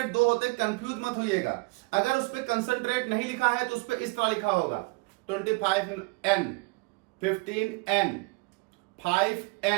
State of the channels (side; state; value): left; quieter; 27.5 dB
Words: 2 होते, कंफ्यूज मत होइएगा। अगर उस पर कंसंट्रेट नहीं लिखा है तो उस पर इस तरह लिखा होगा 25N 15N